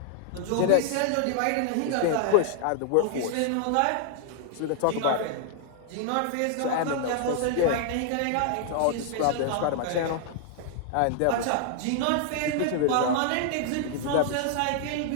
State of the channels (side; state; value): both; different; correlation 0.00